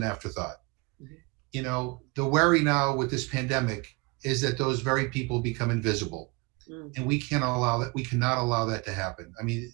afterthought. Mm-hmm. The worry now with this pandemic is that those very people become invisible. Mm-hmm. And we cannot allow that to happen. I mean,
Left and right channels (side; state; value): left; quieter; 27.2 dB